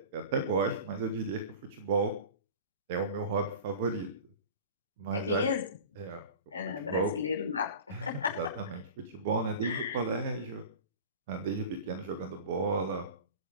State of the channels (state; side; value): inverted; both; correlation -0.36